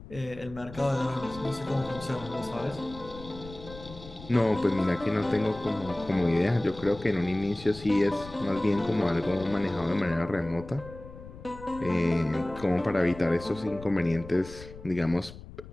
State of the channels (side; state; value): left; noise; rumble, 16 dB below the sound